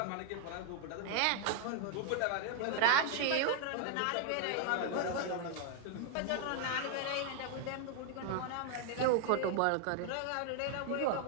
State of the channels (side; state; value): both; different; correlation 0.00